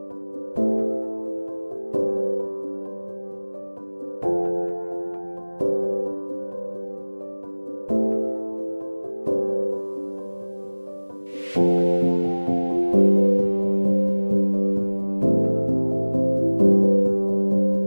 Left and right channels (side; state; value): both; inverted; correlation -1.00